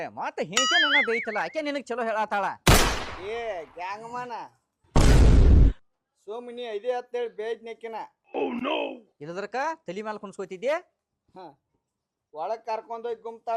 ಮತ್ತೆ ಹೇಂಚೆ ನನ್ನ ಬೇಯ್ತಲ್ಲ ಆಕೆ ನಿನಗ್ ಚಲೋ ಹೇಳತ್ತಾಳ. ಗ್ಯಾಂಗ್ಮನ ಸೋಮಿನಿ ಐದೇ ಹತ್ತೇಳಿ ಬೇಜ್ನೆಕ್ಕಿನ ಇಲ್ಲದ್ರಕ ತಲಿ ಮ್ಯಾಲ ಕುಣ್ಸ್ಕೊತಿದ್ದೆ. ಒಳಗ್ ಕರ್ಕೊಂಡೋಗಿ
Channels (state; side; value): identical; both; correlation 1.00